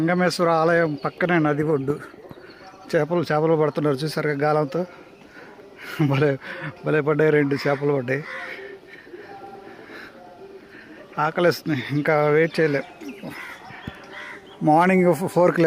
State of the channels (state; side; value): identical; both; correlation 1.00